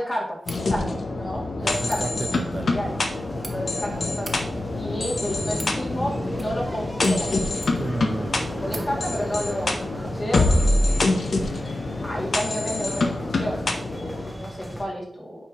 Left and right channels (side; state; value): both; normal; correlation 0.92